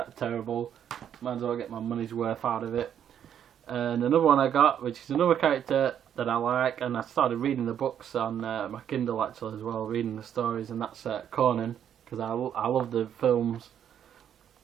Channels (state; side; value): quieter; left; 9.3 dB